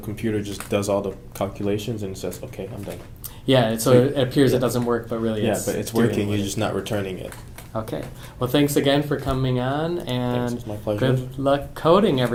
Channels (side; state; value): both; identical; correlation 1.00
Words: just does all the calculations and says, okay, I'm done. Yeah, so So it appears yeah. it doesn't work, but really Yeah, it's but it's doing working, what you're it- just not returning it. Okay. Well, thanks again for coming on, Thanks, and it's my pleasure. good luck coding,